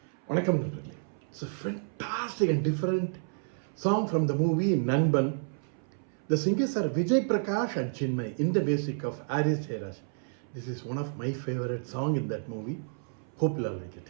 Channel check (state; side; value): silent; left; 58 dB below the other